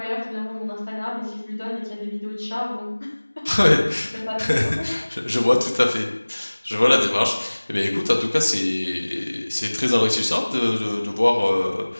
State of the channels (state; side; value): inverted; both; correlation -1.00